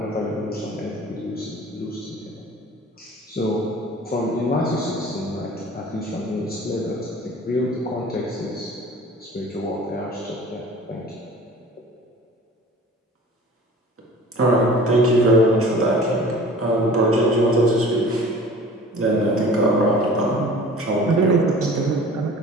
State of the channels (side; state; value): both; normal; correlation 0.44